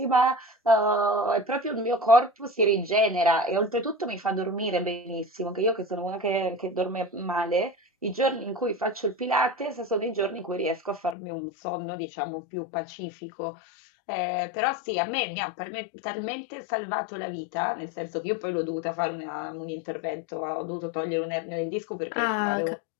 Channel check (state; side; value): drops out; right; at 11.2 s